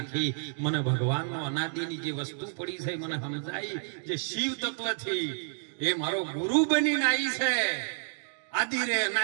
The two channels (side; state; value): left; silent; digital silence